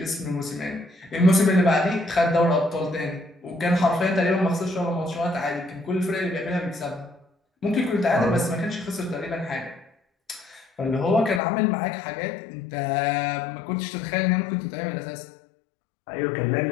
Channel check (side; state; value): right; drops out; at 11.4 s